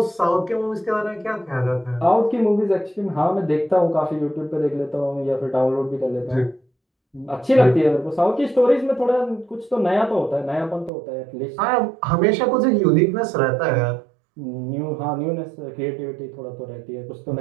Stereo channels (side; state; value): left; drops out; at 10.9 s